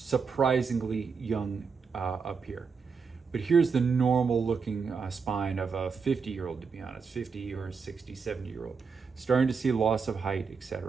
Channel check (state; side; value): quieter; left; 5.4 dB